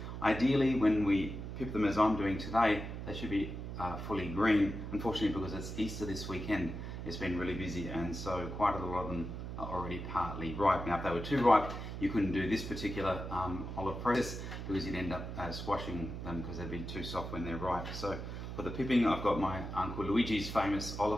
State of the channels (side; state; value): right; noise; hum, 7 dB below the sound